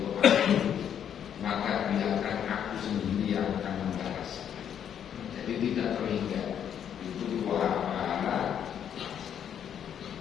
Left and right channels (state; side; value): quieter; right; 9.0 dB